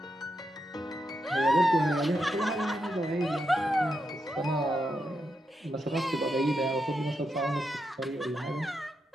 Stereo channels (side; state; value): both; normal; correlation 0.84